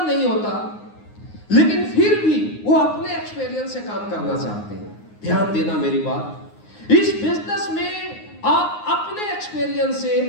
नहीं होता, लेकिन फिर भी वो अपने एक्सपीरियंस से काम करना चाहते हैं। ध्यान देना मेरी बात। इस बिजनेस में आप अपने एक्सपीरियंस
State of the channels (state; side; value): late; right; 9.6 ms